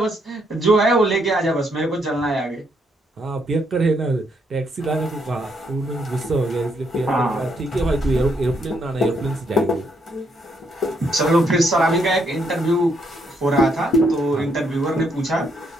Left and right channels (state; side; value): normal; both; correlation 0.74